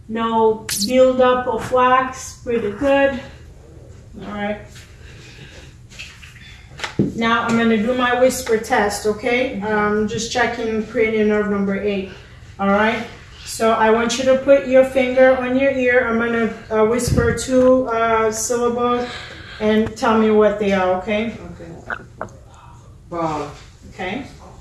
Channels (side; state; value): both; identical; correlation 1.00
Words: no buildup of wax, pretty good. Alright. Now I'm going to do my whisper test, okay? Just checking cranial nerve number 8. Alright? So I want you to put your finger on your ear. I'm going to whisper 2 syllables and tell me what they are, okay? Okay. Ball. Okay.